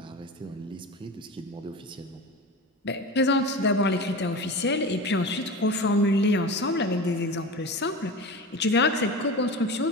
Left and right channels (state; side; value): normal; both; correlation 0.29